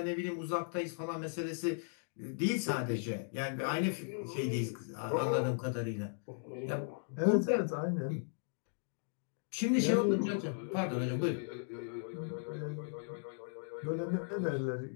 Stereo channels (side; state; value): right; silent; digital silence